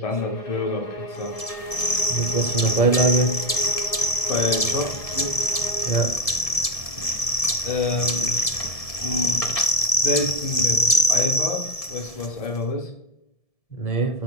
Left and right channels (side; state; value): right; late; 1.7 ms